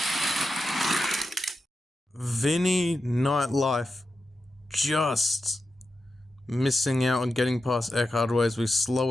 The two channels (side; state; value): both; normal; correlation 0.89